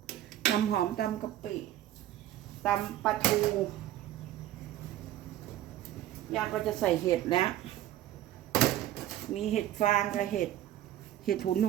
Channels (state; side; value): quieter; left; 13.0 dB